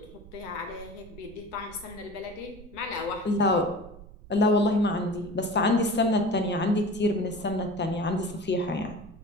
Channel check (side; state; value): right; noise; rumble, 18 dB below the sound